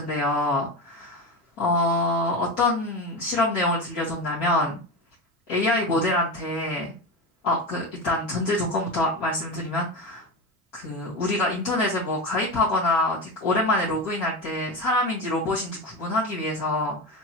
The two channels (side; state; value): both; normal; correlation 0.22